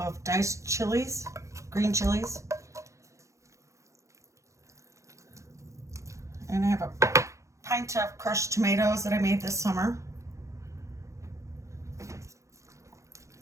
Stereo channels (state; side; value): late; left; 0.15 ms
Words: diced chilies, green chilies. And I have a pint of crushed tomatoes that I made this summer.